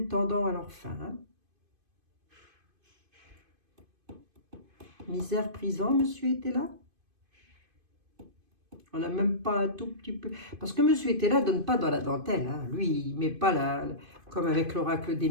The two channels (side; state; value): left; late; 2.5 ms